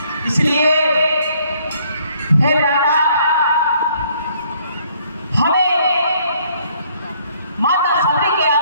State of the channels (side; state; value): both; inverted; correlation -0.65